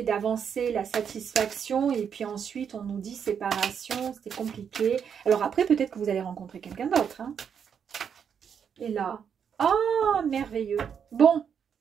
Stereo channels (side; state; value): left; quieter; 7.5 dB